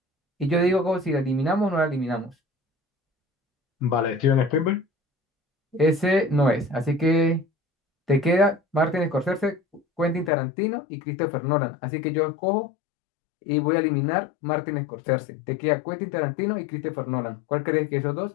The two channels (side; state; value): right; drops out; at 10.3 s